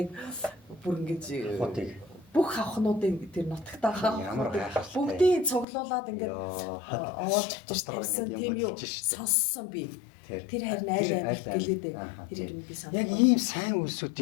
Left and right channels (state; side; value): drops out; right; at 5.7 s